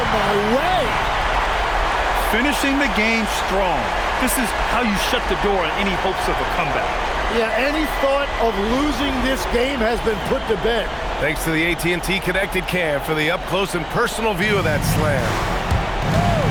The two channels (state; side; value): identical; both; correlation 1.00